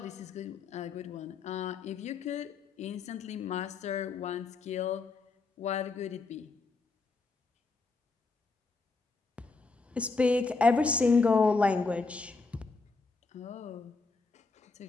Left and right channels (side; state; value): right; quieter; 4.0 dB